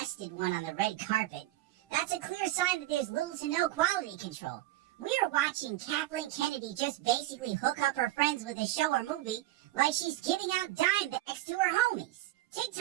one on the red carpet, that's a clear sign that there's little to no quality control. We are watching Kathleen Kennedy just basically hook up her friends with a show or movie like she's giving out dime bags to her homies.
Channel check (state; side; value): quieter; left; 16.2 dB